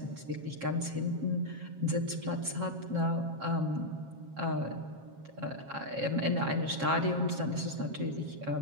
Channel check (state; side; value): late; left; 7.4 ms